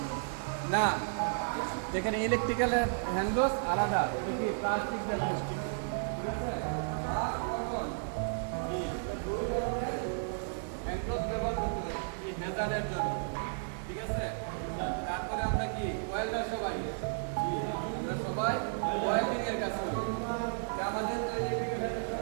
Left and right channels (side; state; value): left; silent; digital silence